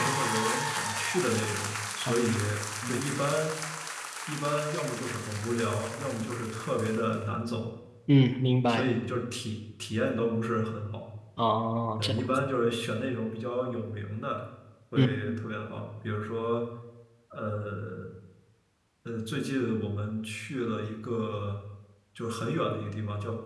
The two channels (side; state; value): both; identical; correlation 1.00